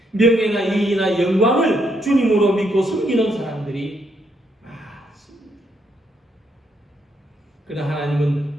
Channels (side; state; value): both; normal; correlation 0.75